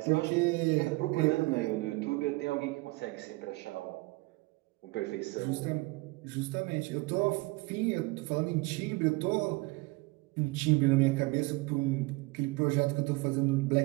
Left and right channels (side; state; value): left; quieter; 23.8 dB